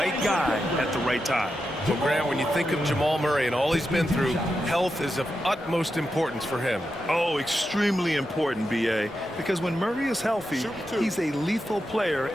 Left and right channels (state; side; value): normal; both; correlation 0.88